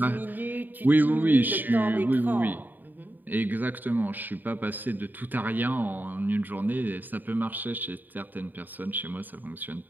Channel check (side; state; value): left; late; 0.088 ms